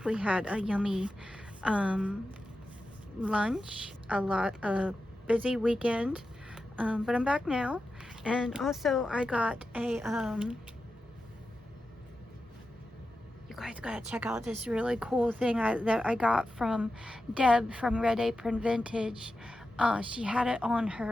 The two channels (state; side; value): normal; both; correlation 0.91